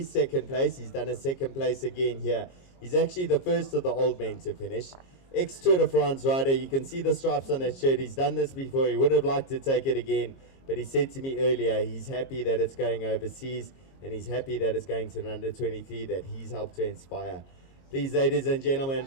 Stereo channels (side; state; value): right; late; 22 ms